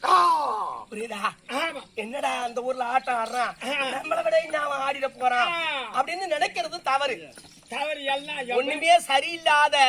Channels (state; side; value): identical; both; correlation 1.00